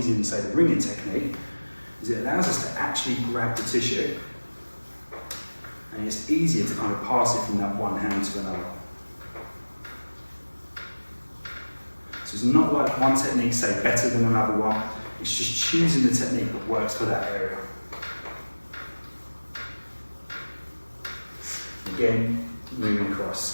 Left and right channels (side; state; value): both; inverted; correlation -1.00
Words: than, say, the ringing technique, is it allows us to actually grab the tissue, and it's easier to kind of pass it from that one hand to another. So it's not like one technique, say, better than another one, it's just choosing the technique that works for that area. Again, moving